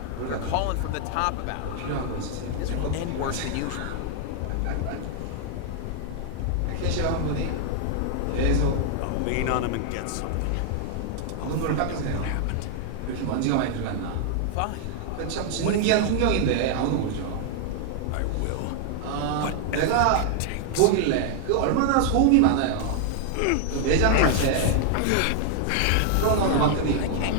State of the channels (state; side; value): different; both; correlation 0.00